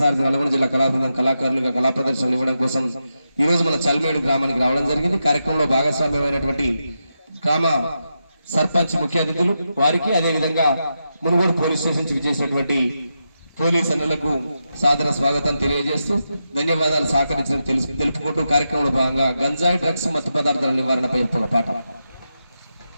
సారథి నల్గొండ జిల్లా కళాబృందం కళాకారులుగా కళా ప్రదర్శనలు ఇవ్వడం కోసం ఈ రోజు మన చల్మేడు గ్రామానికి రావడం జరిగింది. కార్యక్రమంలో భాగస్వామ్యమైనటువంటి గ్రామ సర్పంచ్ ముఖ్య అతిథులు వారికి, అదేవిధంగా మునుగోడు పోలీస్ స్టేషన్ నుంచి విచ్చేసినటువంటి పోలీస్ అన్నలకు సాదర స్వాగతం తెలియజేస్తూ ధన్యవాదాలు సహకరించడం తెలుపుకుంటూ కార్యక్రమంలో భాగంగా గంజాయి, డ్రగ్స్, మత్తు పదార్థాల నివారణపై ఒక పాట.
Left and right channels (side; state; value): both; inverted; correlation -0.87